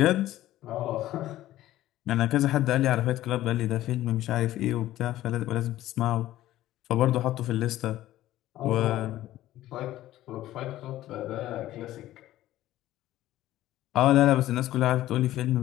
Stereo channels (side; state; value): right; quieter; 14.5 dB